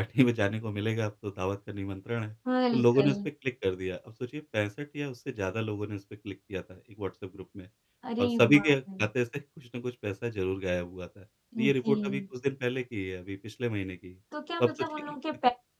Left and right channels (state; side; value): identical; both; correlation 1.00